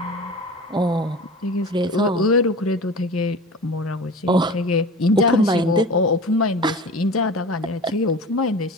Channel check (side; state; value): both; normal; correlation 0.35